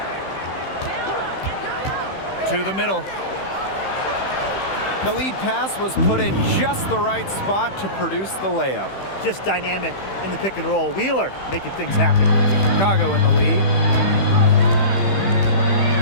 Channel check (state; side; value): late; right; 15 ms